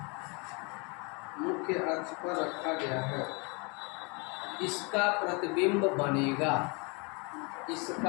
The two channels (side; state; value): right; quieter; 31.1 dB